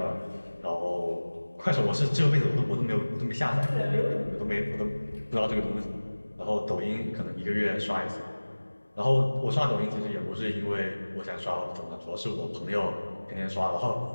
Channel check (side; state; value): both; inverted; correlation -1.00